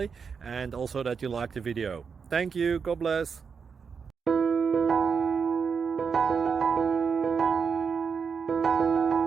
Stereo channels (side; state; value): left; quieter; 6.0 dB